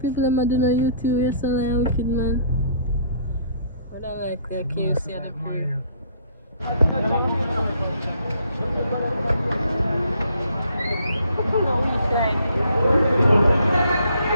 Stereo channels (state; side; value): inverted; both; correlation -0.62